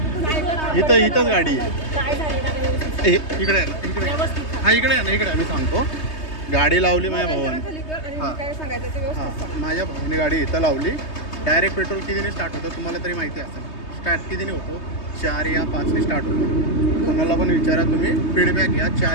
तू इथंच गाडी आहे. काय झालं गाडी व्यवस्थित? इकडे आहे ना, इकडे. व्यवस्थित हा इकडे आहे ना, इकडे आम्ही सांगतो. गाडी लावली माझ्या मोबाईल भावाने. जरा खाली कर आणि हा. मी काय सांगायचं ते हां, व्यवस्थित सांग. माझ्या भावाने गाडी इथं लावली. डायरेक्ट पेट्रोल कितीने स्टार्ट होतं तुम्हाला तरी माहिती असेल. स्टार्ट कितीने होतो, 4 या 5ने स्टार्ट होतो. कोणाला पण विचारा तुम्ही, फीडबॅक घ्या.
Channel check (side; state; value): right; late; 3.2 ms